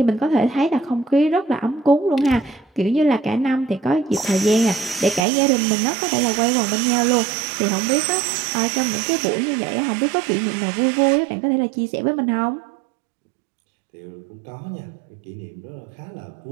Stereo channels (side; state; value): left; drops out; at 5.2 s